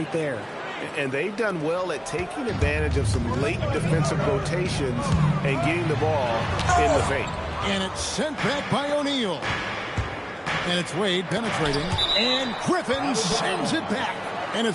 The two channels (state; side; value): identical; both; correlation 1.00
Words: there. And they've done well at taking advantage of some late defensive rotations and getting the ball in the paint. And it's sent back by O'Neal. And it's Wade penetrating. And Griffin sends it back. And